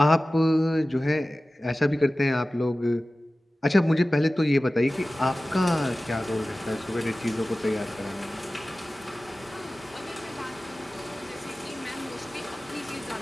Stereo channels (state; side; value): normal; both; correlation 0.96